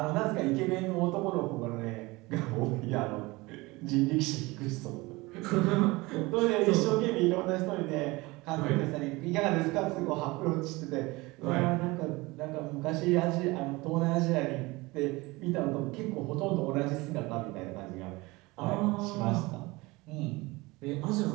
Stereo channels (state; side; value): quieter; left; 22.5 dB